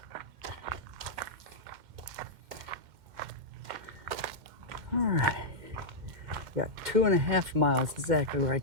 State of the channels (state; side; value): late; left; 2.1 ms